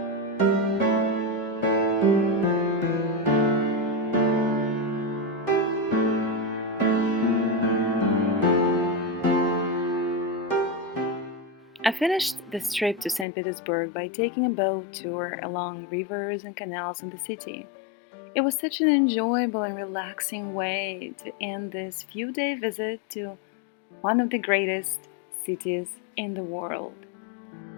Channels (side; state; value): right; drops out; at 13.2 s